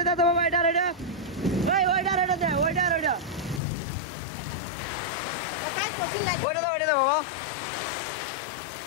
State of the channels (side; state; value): right; drops out; at 3.6 s